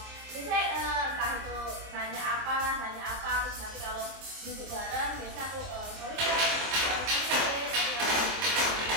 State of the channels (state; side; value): late; left; 25 ms